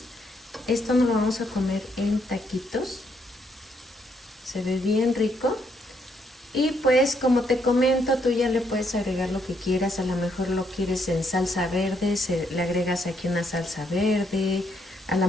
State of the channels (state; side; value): normal; both; correlation 0.74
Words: Esto nos lo vamos a comer en taquitos. Se ve bien rico. Y pues como te comento, tú ya le puedes agregar lo que quieras. A lo mejor lo quieres en salsa verde, le agregas aquí una salsa verde. A